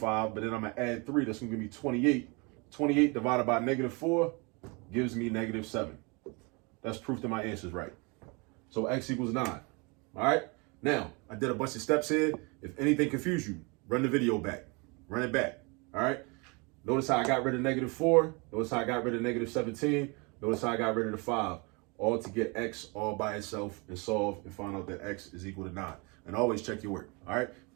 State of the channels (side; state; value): left; quieter; 29.7 dB